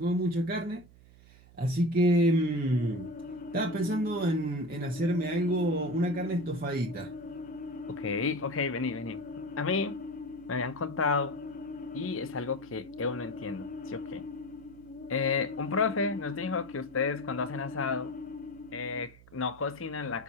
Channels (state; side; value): noise; right; hum, 23 dB below the sound